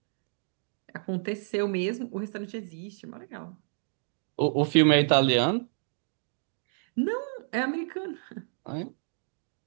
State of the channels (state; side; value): silent; left; digital silence